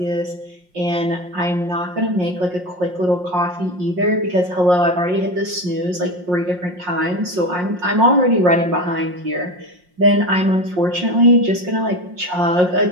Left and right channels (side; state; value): left; late; 5.6 ms